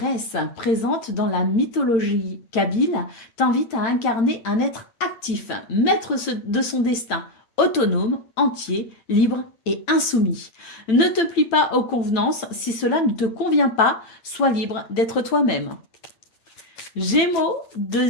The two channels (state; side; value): late; right; 8.9 ms